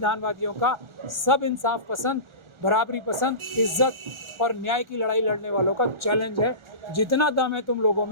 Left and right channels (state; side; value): late; left; 1.4 ms